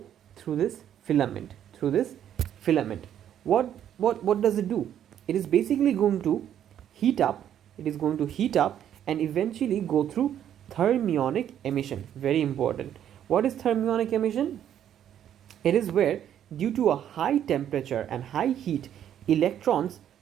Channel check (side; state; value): left; quieter; 10.2 dB